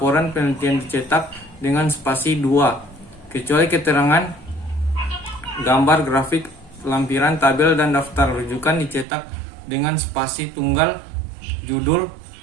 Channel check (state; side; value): drops out; left; at 9.1 s